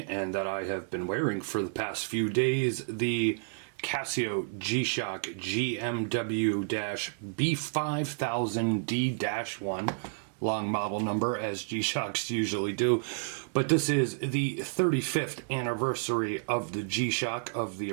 and that I have been wearing for the past few days, the Casio G-Shock GMW-B5000D-1, long model number as G-Shocks usually do, but this is the 35th anniversary of the G-Shock, of the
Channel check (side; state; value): left; silent; digital silence